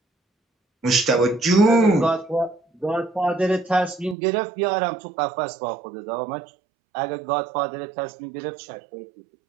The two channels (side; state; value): left; drops out; at 4.2 s